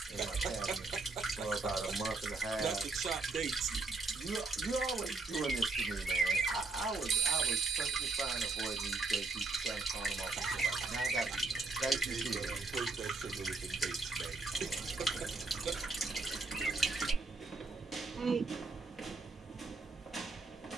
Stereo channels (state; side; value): quieter; left; 3.7 dB